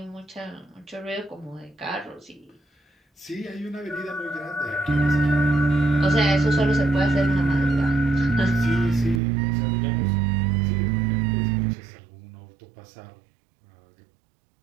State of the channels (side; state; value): left; drops out; at 9.2 s